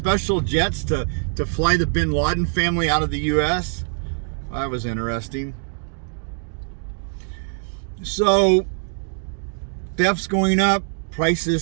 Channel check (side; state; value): left; silent; digital silence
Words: jets to fly the Bin Laden family out of the U.S. That was interesting. So, theft's going up,